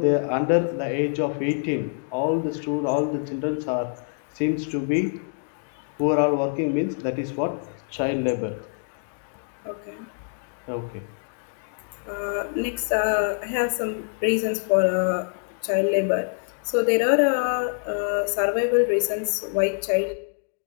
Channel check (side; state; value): right; silent; digital silence